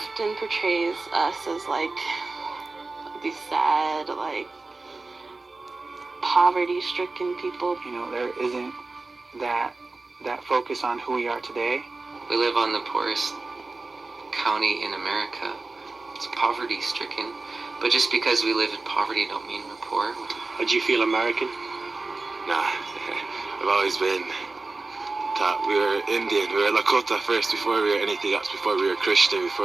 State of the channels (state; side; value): quieter; left; 3.5 dB